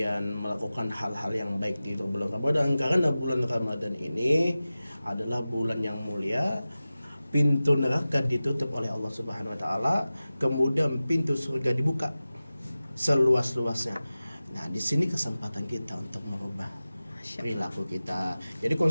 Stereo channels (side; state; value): both; inverted; correlation -0.96